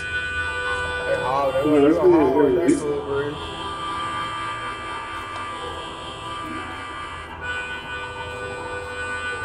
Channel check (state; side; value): identical; both; correlation 1.00